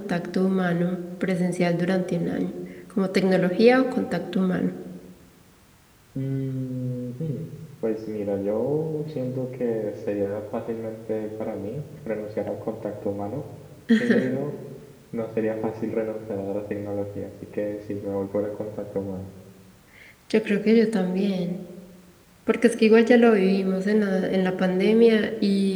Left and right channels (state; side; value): identical; both; correlation 1.00